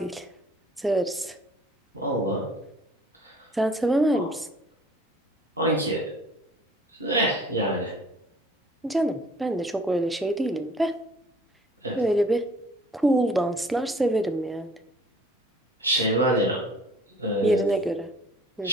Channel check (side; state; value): both; normal; correlation 0.52